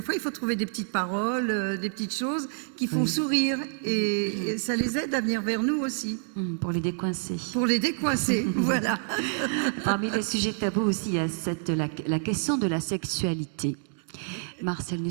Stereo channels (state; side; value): silent; left; 60 dB below the other